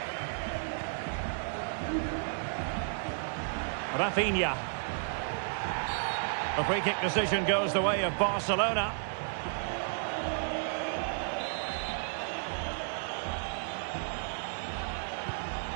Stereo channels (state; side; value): silent; left; 56 dB below the other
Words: Rafinha. The free kick decision goes the way of Barcelona.